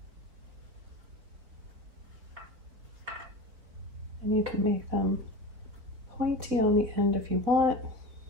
And you can make them pointy on the end if you want.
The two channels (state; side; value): late; left; 4.6 ms